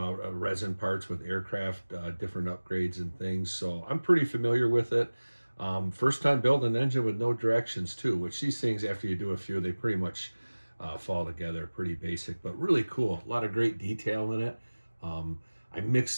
resin parts with aircraft, different upgrades and things, so I'm pretty familiar with it. First time building an engine with no directions too, which these things, after you do a few, they pretty much fall together pretty basic, but really cool. A lot of great detail in it. I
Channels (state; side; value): inverted; both; correlation -1.00